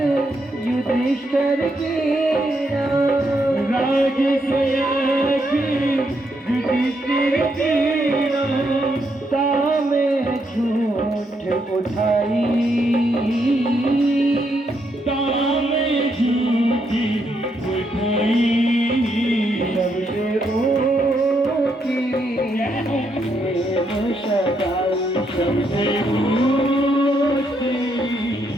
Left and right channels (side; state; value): both; normal; correlation 0.78